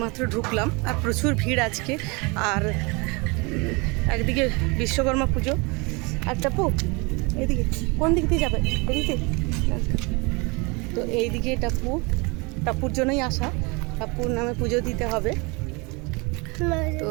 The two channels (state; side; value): quieter; left; 28.1 dB